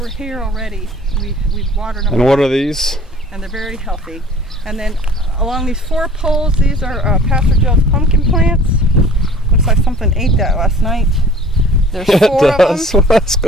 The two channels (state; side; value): normal; both; correlation 0.47